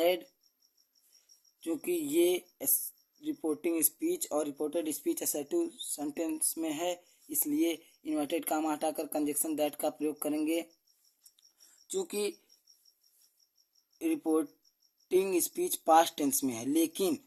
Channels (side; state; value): both; identical; correlation 1.00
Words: क्योंकि ये रिपोर्टिंग स्पीच और रिपोर्टेड स्पीच असर्टिव सेंटेंस में है, इसलिए इन्वर्टेड कामा हटाकर कंजक्शन दैट का प्रयोग करेंगे। चूंकि रिपोर्टिंग स्पीच पास्ट टेंस में है, लेकिन